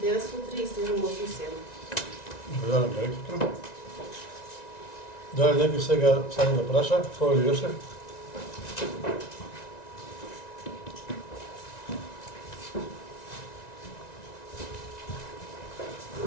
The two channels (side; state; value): right; late; 1.9 ms